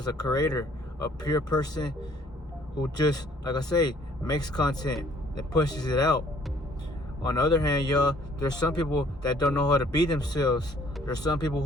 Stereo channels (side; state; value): both; normal; correlation 0.60